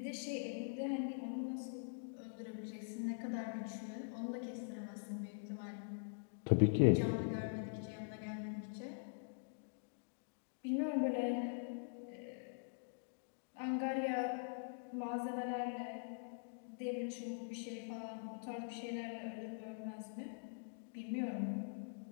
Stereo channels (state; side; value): silent; right; digital silence